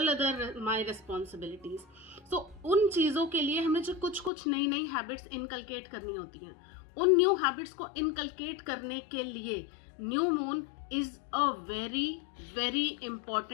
other my responsibilities. So उन चीज़ों के लिए हमें जो कुछ कुछ नई नई हैबिट्स इनकलकेट करनी होती हैं, उन न्यू हैबिट्स को इनकलकेट करने के लिए new moon is a very very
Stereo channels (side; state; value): right; drops out; at 4.3 s